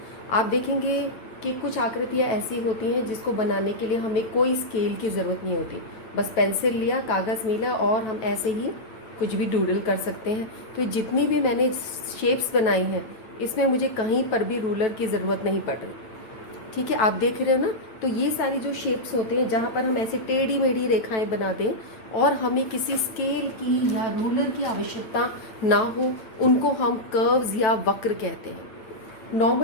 आप देखेंगे कि कुछ आकृतियाँ ऐसी होती हैं जिसको बनाने के लिए हमें कोई स्केल की ज़रूरत नहीं होती, बस पेंसिल लिया, कागज़ मिला और हम ऐसे ही कुछ भी डूडल कर सकते हैं। तो जितनी भी मैंने शेप्स बनाई हैं इसमें मुझे कहीं पर भी रूलर की ज़रूरत नहीं पड़ रही। ठीक है, आप देख रहे हो ना। तो ये सारी जो शेप्स होते हैं जहाँ पर हम ऐसे टेढ़ी मेढ़ी रेखाएं बना दें और हमें किसी स्केल की या रूलर की आवश्यकता ना हो, उनको हम कर्व्स या वक्र कहते हैं।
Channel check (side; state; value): right; late; 9.1 ms